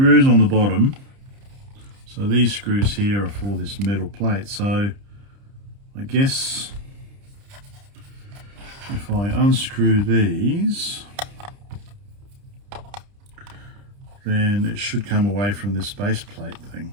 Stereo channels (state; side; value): late; left; 30 ms